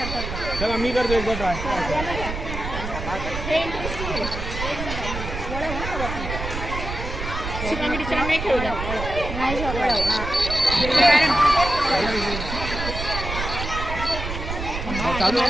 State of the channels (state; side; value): noise; right; rumble, 6 dB below the sound